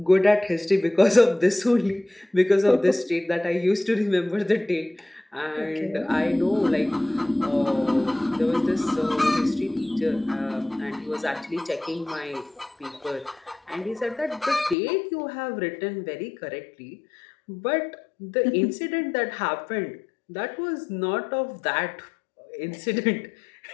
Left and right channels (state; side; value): drops out; right; at 14.8 s